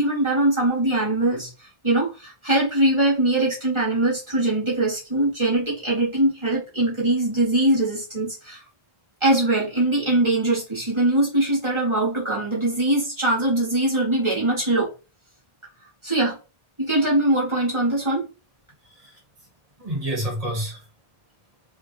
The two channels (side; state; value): left; late; 1.4 ms